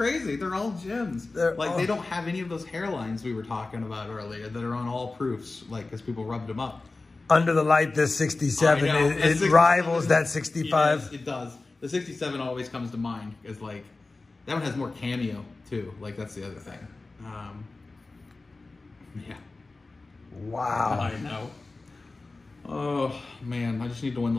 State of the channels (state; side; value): quieter; right; 3.5 dB